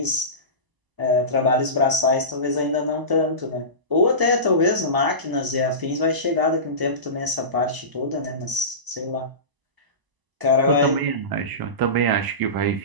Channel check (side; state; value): left; late; 1.0 ms